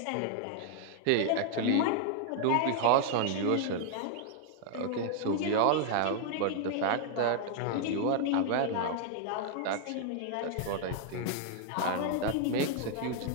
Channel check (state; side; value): different; both; correlation -0.01